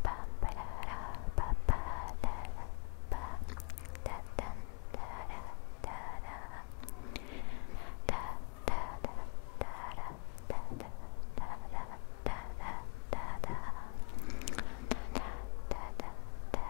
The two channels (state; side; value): quieter; right; 39.0 dB